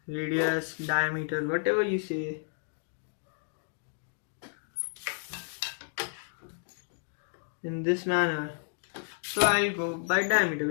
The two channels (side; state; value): right; silent; 57 dB below the other